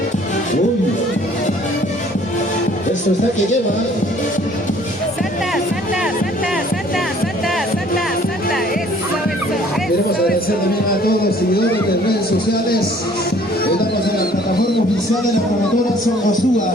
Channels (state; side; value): normal; both; correlation 0.56